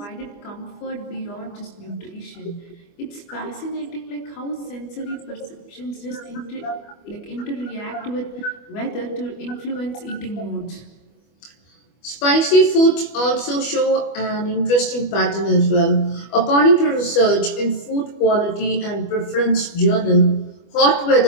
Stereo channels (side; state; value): right; late; 25 ms